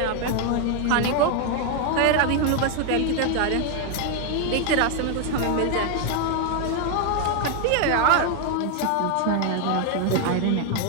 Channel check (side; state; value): both; different; correlation 0.00